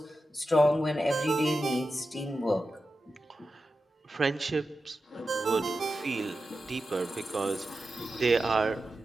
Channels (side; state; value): both; normal; correlation 0.91